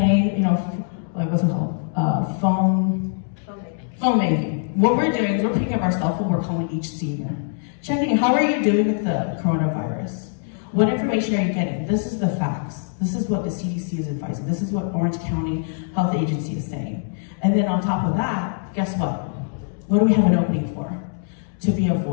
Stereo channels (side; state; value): right; silent; digital silence